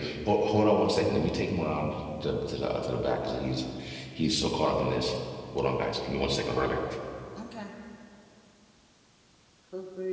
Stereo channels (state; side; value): identical; both; correlation 1.00